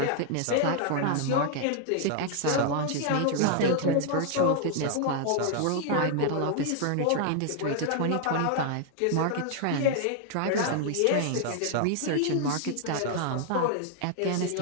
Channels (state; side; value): different; both; correlation 0.00